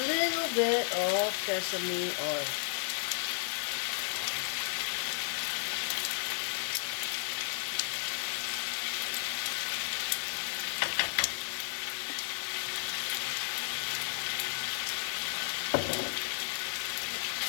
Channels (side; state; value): right; silent; 55 dB below the other